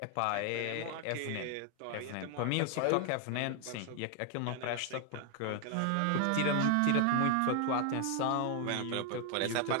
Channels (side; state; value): both; different; correlation 0.00